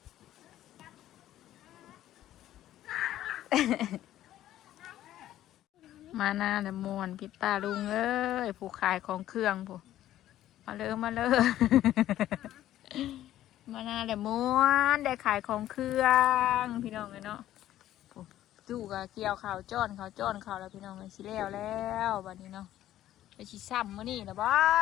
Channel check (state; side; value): quieter; right; 13.0 dB